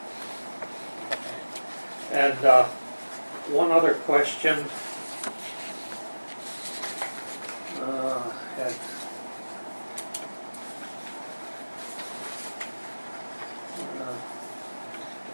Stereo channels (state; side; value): inverted; both; correlation -1.00